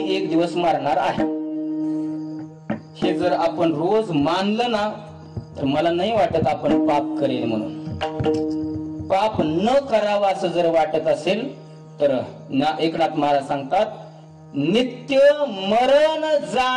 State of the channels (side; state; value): both; identical; correlation 1.00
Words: एक दिवस मरणार आहे. हे जर आपण रोज मानलं ना, तर मला नाही वाटत आपण पाप करेल म्हणून. पाप न करावा असं जर वाटत असेल तर एकनाथ महाराज सांगतात, नित्य मरण